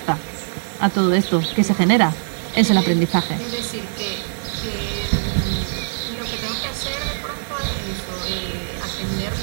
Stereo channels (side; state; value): left; silent; digital silence